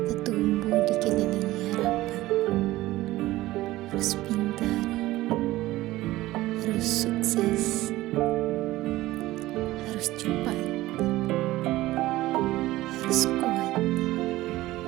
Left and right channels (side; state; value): left; quieter; 17.2 dB